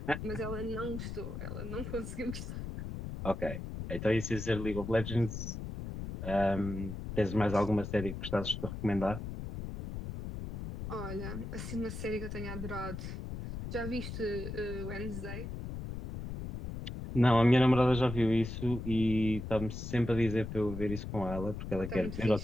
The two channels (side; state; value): left; noise; rumble, 7 dB below the sound